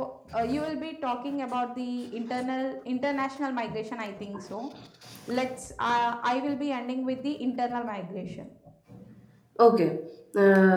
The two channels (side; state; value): both; identical; correlation 1.00